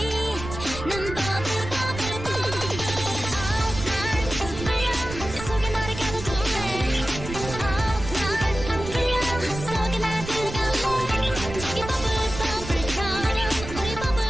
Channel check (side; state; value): right; noise; rumble, 9 dB below the sound